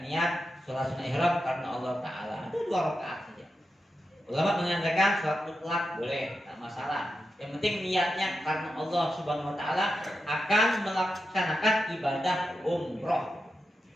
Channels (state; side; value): normal; both; correlation 0.89